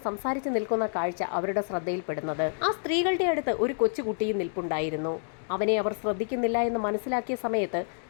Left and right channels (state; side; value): silent; right; digital silence